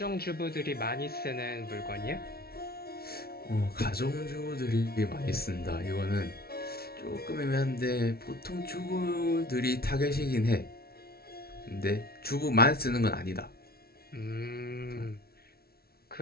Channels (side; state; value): right; late; 0.44 ms